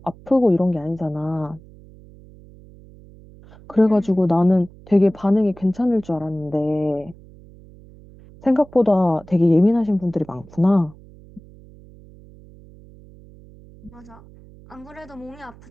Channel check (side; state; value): right; noise; hum, 22 dB below the sound